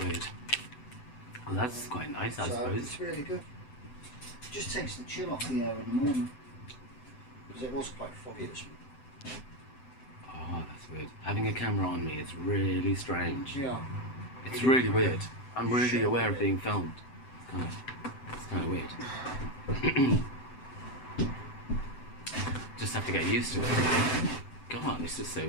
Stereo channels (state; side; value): late; right; 7.9 ms